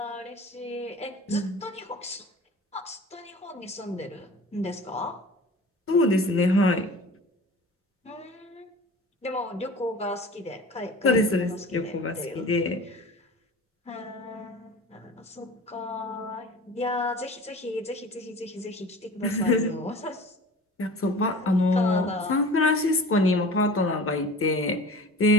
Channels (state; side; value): normal; both; correlation 0.40